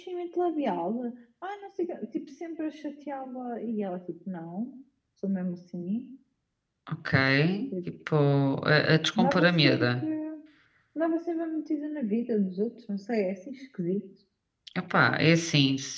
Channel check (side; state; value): both; identical; correlation 1.00